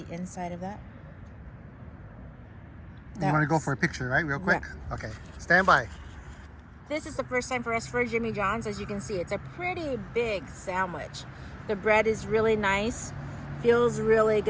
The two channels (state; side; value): identical; both; correlation 1.00